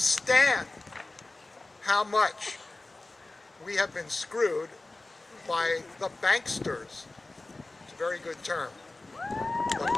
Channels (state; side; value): quieter; right; 3.0 dB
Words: how much we have been screwed by the banksters. It's a very good term. The